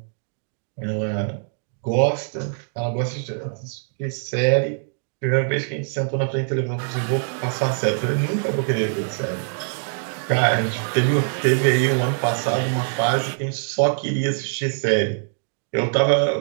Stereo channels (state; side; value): silent; left; digital silence